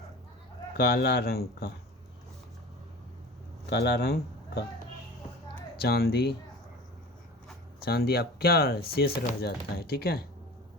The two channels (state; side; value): normal; both; correlation 0.38